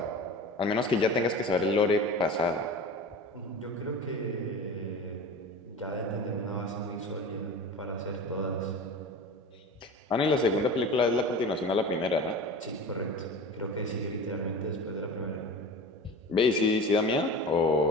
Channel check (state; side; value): normal; both; correlation 0.34